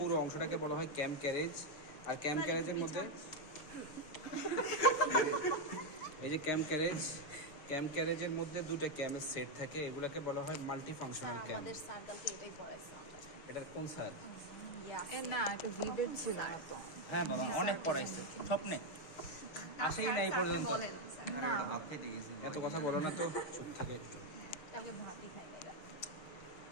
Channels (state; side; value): late; right; 6.5 ms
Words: অংশটাকে বলা হয় ক্যাম ক্যারেজ। আর ক্যাম ক্যারেজের মধ্যে এই যে ক্যাম ক্যারেজের মধ্যে দুটো ক্যামের সেট থাকে, এগুলোকে বলা হয় মাল্টি ফাংশনাল ক্যাম। আমাদের সার্কেলকে এটাই পড়াইছে আমরা। এটা কোন স্যার? না, এটা ভিডিও ছিল না তো। হ্যাঁ বাবা, অনেক পড়াইছে স্বপ্নে আসেই না এই পর্যন্ত। না, এত কথা বলো না তো, চুপ থাকে একটু। কালকে ভাতই খাই না।